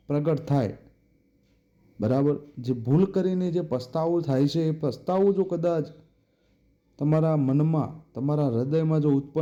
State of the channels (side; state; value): both; identical; correlation 1.00